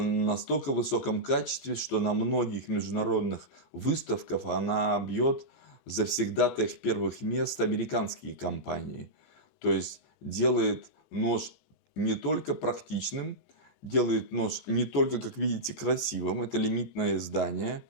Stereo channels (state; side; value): late; right; 14 ms